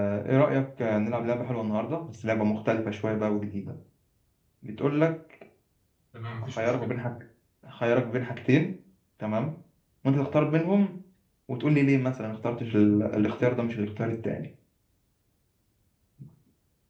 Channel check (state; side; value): identical; both; correlation 1.00